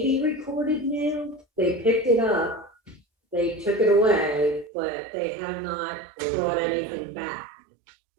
be recorded now. They picked it up. They took it away, but they have not brought anything back.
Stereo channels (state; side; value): drops out; left; at 4.7 s